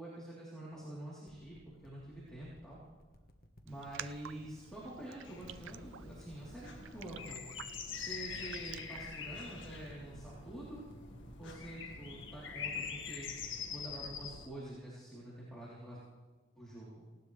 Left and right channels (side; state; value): both; normal; correlation 0.38